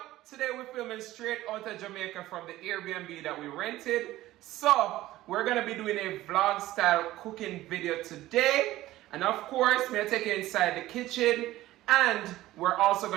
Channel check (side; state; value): left; quieter; 15.9 dB